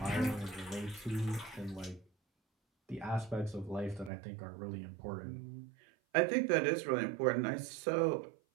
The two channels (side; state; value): left; drops out; at 4.1 s